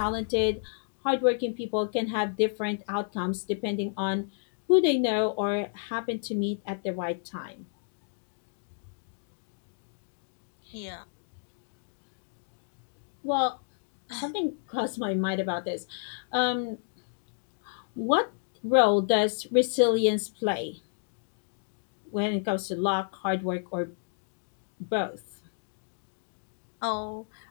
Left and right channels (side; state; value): right; silent; digital silence